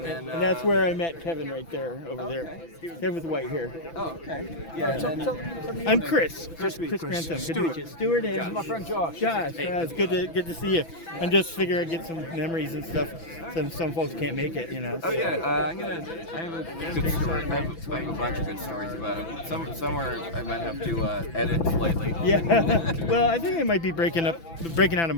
then. And that's where I met Kevin right there, over there. Kevin with the white hair. Oh, okay. Yeah, and then, I'm Chris. Chris Chris. Grantham. Good to Stuart. meet you. Stuart and My friend Josh. Josh. It's good to see you. I'm just figuring I'd get some memories and stuff. Some folks can't make it, you know. Oh yeah, I have a good story. I have a bunch of good stories about it. Somewhere I might have to edit slightly. Yeah. Well, I think I might be breaking out a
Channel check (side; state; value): right; late; 6.0 ms